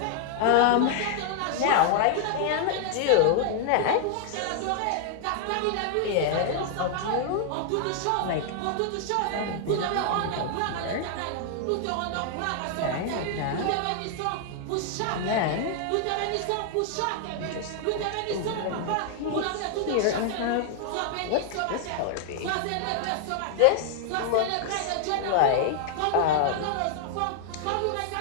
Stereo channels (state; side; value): different; both; correlation 0.00